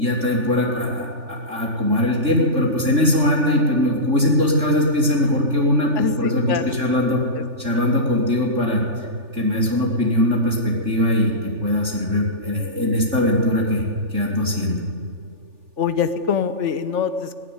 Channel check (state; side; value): late; left; 3.4 ms